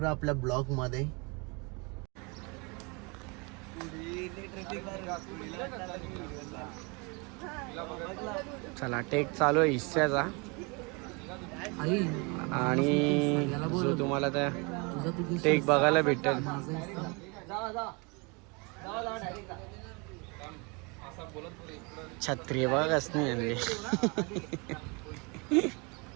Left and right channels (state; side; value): quieter; left; 30.1 dB